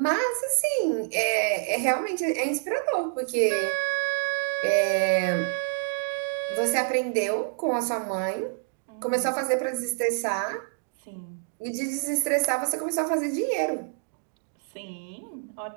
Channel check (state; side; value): silent; left; digital silence